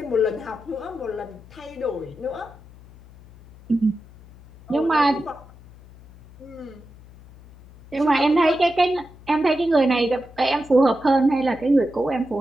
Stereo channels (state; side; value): noise; left; hum, 22 dB below the sound